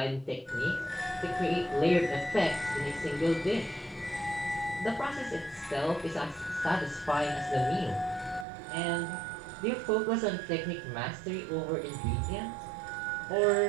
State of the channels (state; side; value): drops out; left; at 8.5 s